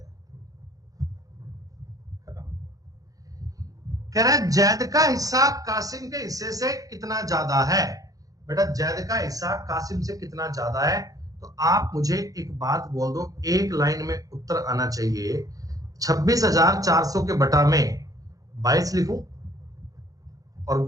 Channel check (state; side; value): late; left; 0.17 ms